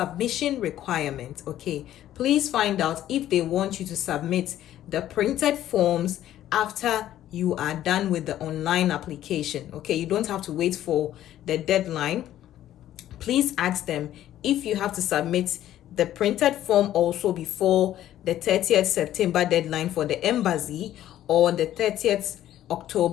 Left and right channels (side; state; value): right; quieter; 12.5 dB